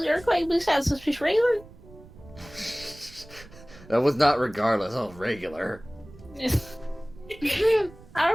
the earthquake besides suspicious regular. That was not regardless of regular.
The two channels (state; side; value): noise; right; rumble, 21 dB below the sound